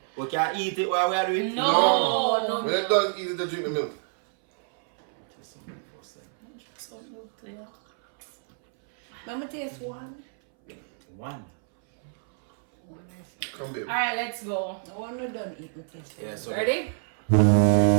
We can eat it while we are doing it? No. When you're done eating, they drink the milk. Mama taste one. One. Come baby. Alright, let's go. No, I'm not done eating taste. Yeah, so Ready?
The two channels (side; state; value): left; silent; 60 dB below the other